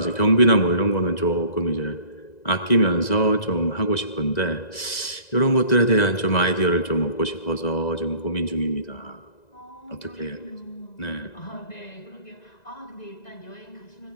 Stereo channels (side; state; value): right; late; 2.0 ms